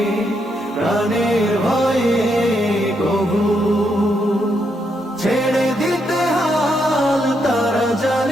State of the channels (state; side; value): normal; both; correlation 0.79